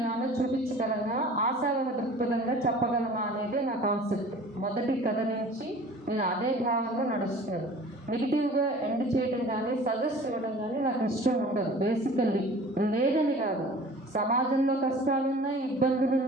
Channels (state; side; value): normal; both; correlation 0.45